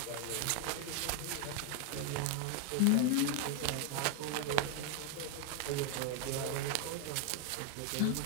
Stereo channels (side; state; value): both; different; correlation 0.01